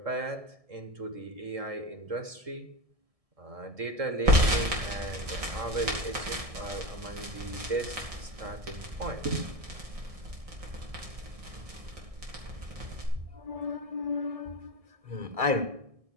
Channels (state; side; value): late; left; 1.7 ms